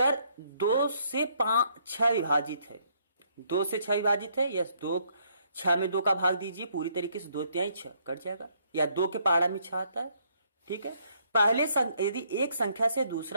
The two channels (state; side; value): inverted; both; correlation -0.70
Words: 2 से 6 विभाजित है, 2 से 6 विभाजित है, यस, 6 में 2 का भाग दीजिए, पूरी तरीके से 2 तिहाई 6 कट जाएगा, या 2 के पहाड़ा में 6 आता है, ठीक है। पहले यदि एक संख्या से